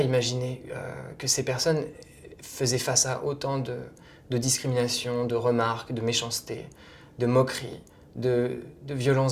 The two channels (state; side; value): identical; both; correlation 1.00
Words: imaginé que ces personnes faisaient face à autant de discrimination, de remarques, de méchanceté, de moqueries, de